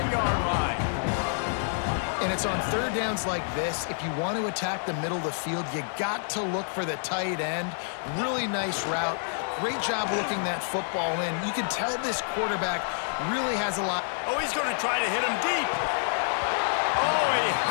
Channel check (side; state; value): right; silent; 57 dB below the other